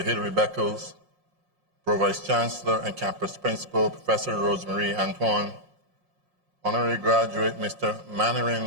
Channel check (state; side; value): late; left; 5.6 ms